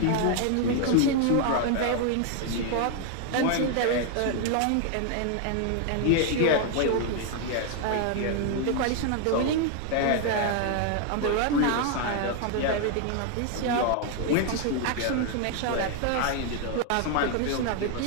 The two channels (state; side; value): different; both; correlation 0.00